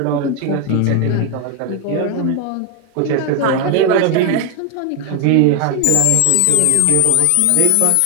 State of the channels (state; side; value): different; both; correlation 0.01